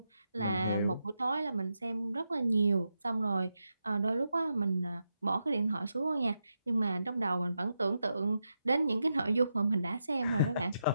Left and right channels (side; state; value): both; inverted; correlation -0.86